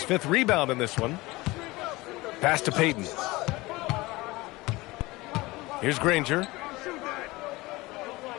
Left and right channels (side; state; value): right; quieter; 21.1 dB